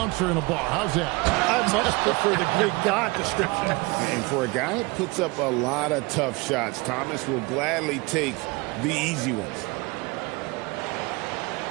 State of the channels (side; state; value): left; quieter; 25.6 dB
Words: in a bar. How's that? I much prefer the Greek god description. And for a guy that puts up a lot of tough shots, Thomas will gladly take the easy ones.